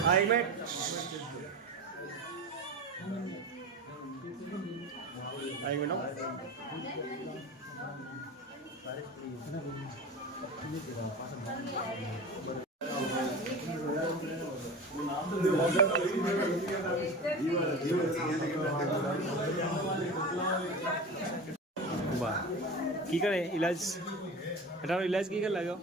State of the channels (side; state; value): both; normal; correlation 0.30